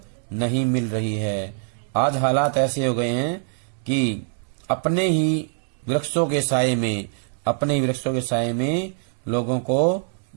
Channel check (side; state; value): left; silent; 63 dB below the other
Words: नहीं मिल रही है। आज हालात ऐसे हो गए हैं कि अपने ही वृक्षों के साए में लोगों को